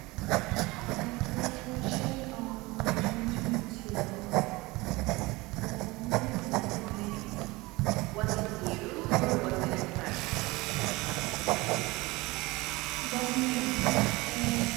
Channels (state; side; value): quieter; left; 22.3 dB